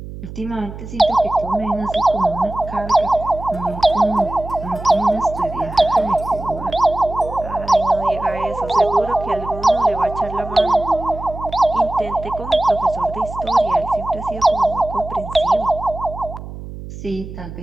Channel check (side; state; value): right; noise; hum, 12 dB below the sound